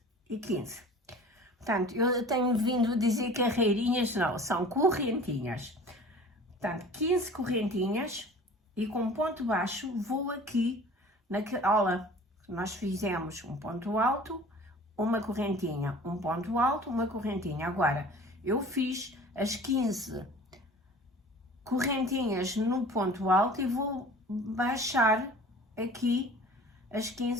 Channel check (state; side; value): normal; both; correlation 0.44